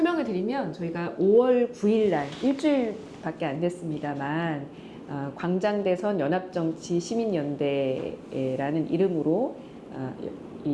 드리면 저희가 5월 9일 날 일주일밖에 안 됐습니다만 광장대선 연합정치 시민연대라는 이름으로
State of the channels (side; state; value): both; identical; correlation 1.00